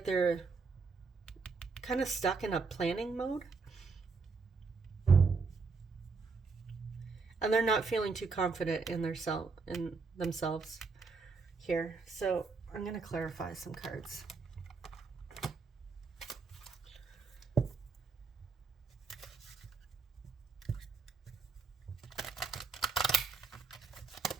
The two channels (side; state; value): left; quieter; 4.6 dB